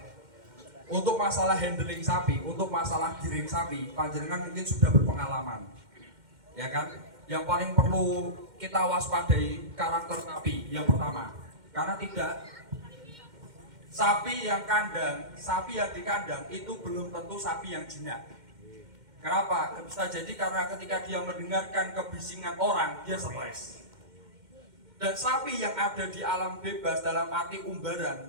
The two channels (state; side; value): late; left; 2.1 ms